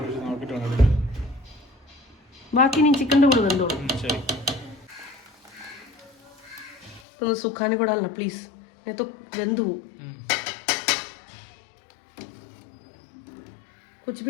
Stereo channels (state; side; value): drops out; right; at 7.0 s